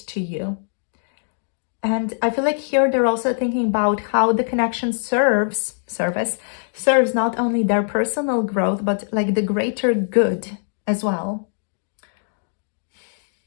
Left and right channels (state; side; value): silent; right; digital silence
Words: you. And I feel like here they're also thinking about how the connection serves not only their personal growth, but like the greater good as well.